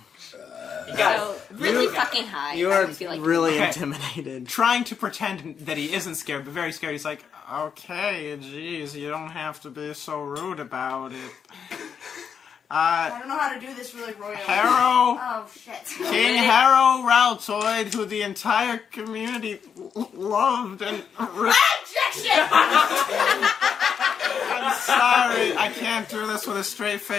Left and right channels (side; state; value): right; quieter; 7.1 dB